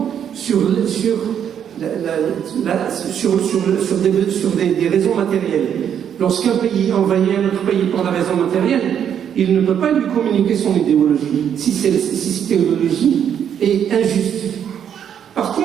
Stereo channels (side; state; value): left; quieter; 8.8 dB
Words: sur des raisons matérielles. Lorsqu'un pays envahit un autre pays pour la raison matérielle, il ne peut pas lui communiquer son idéologie, si cette idéologie est injuste. Par